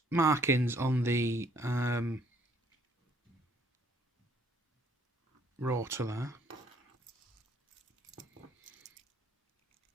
markings on the rotor there.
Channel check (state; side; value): normal; both; correlation 0.64